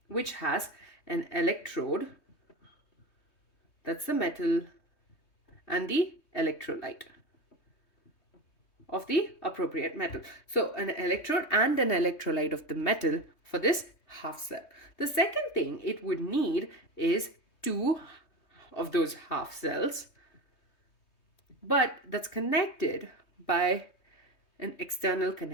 which has an electrode, that's the metal, and the electrolyte of the appropriate metal. So an electrode and an electrolyte of the metal for this half cell. The second thing it would need is 2 of those half cells, but that's connected by an external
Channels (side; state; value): right; late; 3.2 ms